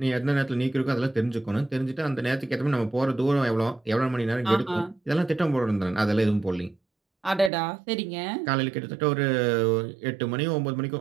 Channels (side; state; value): left; drops out; at 7.5 s